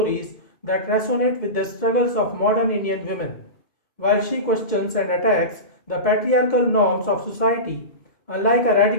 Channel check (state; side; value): late; right; 2.1 ms